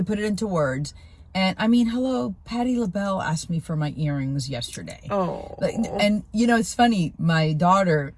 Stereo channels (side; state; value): both; identical; correlation 1.00